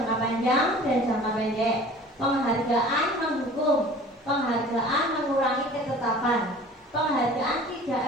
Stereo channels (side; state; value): both; normal; correlation 0.45